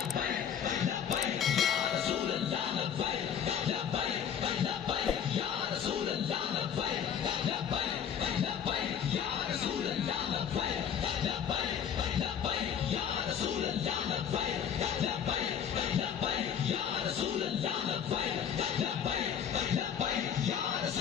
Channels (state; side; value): quieter; right; 8.4 dB